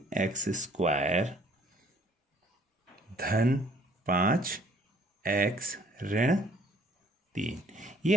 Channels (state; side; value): normal; both; correlation 0.59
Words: धन 5x ऋण 3, ये